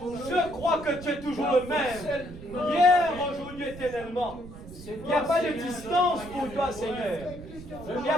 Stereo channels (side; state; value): right; noise; rumble, 15 dB below the sound